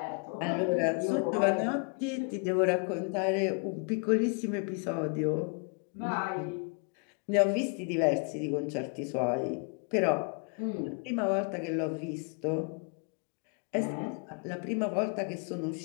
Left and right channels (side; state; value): right; quieter; 36.4 dB